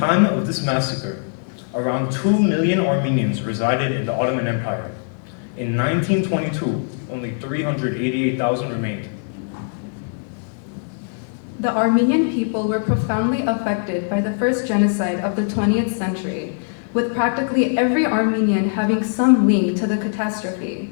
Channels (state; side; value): silent; right; 65 dB below the other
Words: of this massacre, around 2 million Armenians resided in the Ottoman Empire. In 1922, only 388,000 remained. The Armenian people were profoundly affected by the first genocide of the 20th century, with practically every Armenian having some link to the catastrophe.